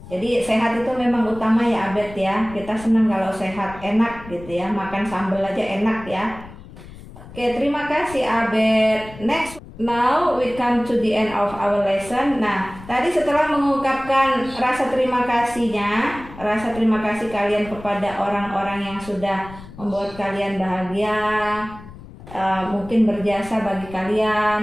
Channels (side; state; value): left; noise; rumble, 17 dB below the sound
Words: Jadi sehat itu memang utama ya Abed ya. Kita senang kalau sehat, enak gitu ya, makan sambal aja enak ya. Oke, terima kasih Abed. Next. Now we come to the end of our lesson. Nah, tadi setelah mengungkapkan rasa terima kasihnya, rasa terima kasih kalian kepada orang-orang yang sudah membuat kalian bahagia, mungkin berjasa bagi